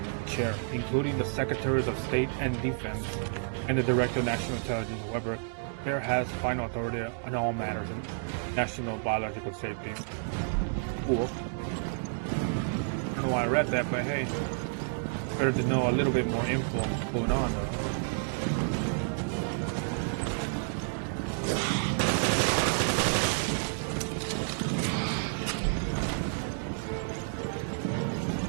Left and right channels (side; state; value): left; silent; digital silence